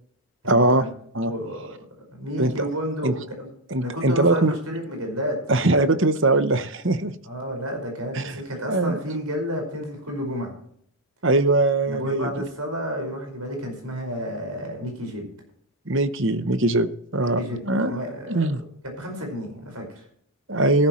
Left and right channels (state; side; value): normal; both; correlation 0.02